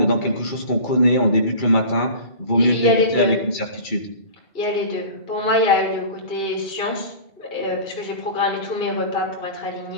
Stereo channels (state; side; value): late; right; 2.3 ms